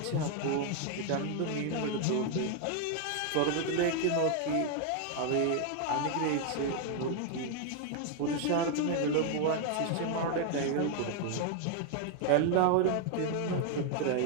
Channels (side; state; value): both; different; correlation 0.00